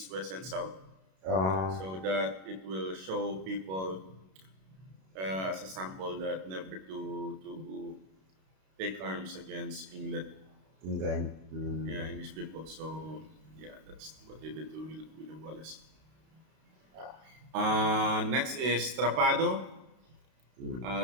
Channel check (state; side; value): late; left; 32 ms